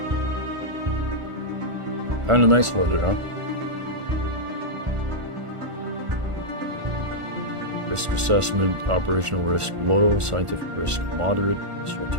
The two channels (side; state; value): left; late; 1.5 ms